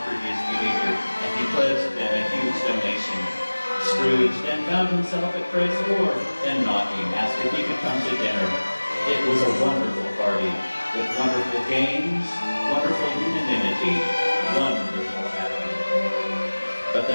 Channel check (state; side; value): inverted; both; correlation -1.00